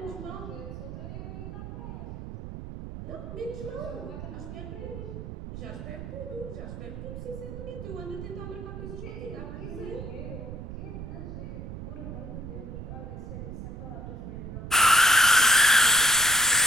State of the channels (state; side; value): noise; right; rumble, 9 dB below the sound